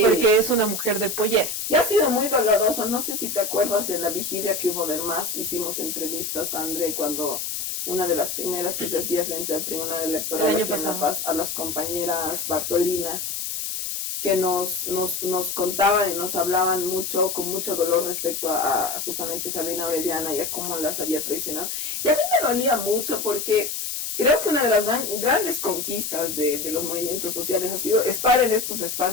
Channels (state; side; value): noise; left; hiss, 4 dB below the sound